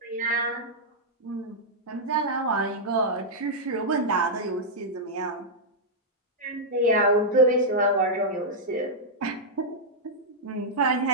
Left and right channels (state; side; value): normal; both; correlation -0.07